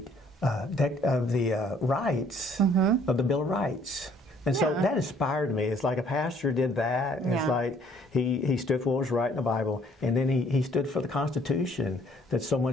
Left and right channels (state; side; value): normal; both; correlation 0.61